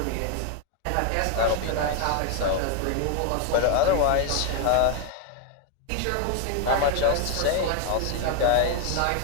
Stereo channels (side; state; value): both; different; correlation 0.00